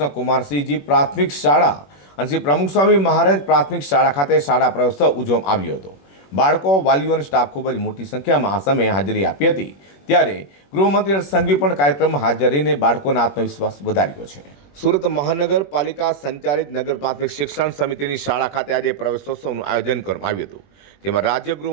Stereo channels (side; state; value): right; late; 21 ms